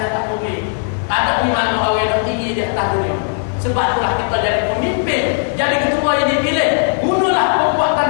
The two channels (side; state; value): right; silent; digital silence